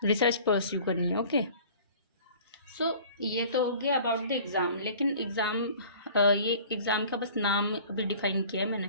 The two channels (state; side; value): inverted; both; correlation -0.47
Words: रिसर्च परस्यू करनी है, ओके। सो ये तो हो गया अबाउट द एग्ज़ाम। लेकिन ये एग्ज़ाम का बस नाम अभी डिफाइन किया है